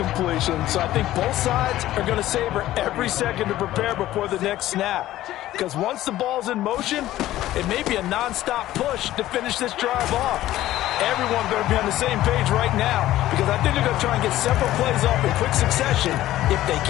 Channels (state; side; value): quieter; right; 14.6 dB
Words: so I think both sides are going to savor every second to prepare before the next snap. Because once the ball's in motion, it may be a non-stop push to finish this drive off. Everyone's going to be on the same page right now because I think they're going to try and get several plays off in quick succession if they